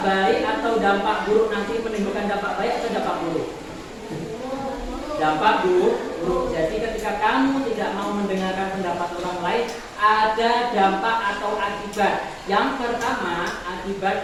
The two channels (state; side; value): identical; both; correlation 1.00